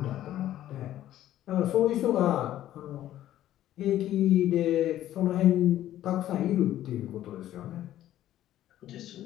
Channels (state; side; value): quieter; right; 12.9 dB